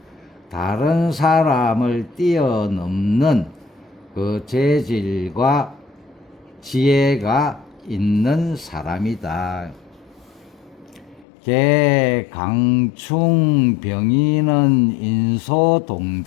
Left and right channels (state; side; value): drops out; right; at 11.2 s